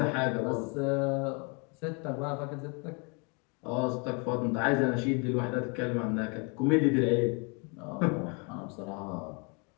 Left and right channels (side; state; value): right; quieter; 33.6 dB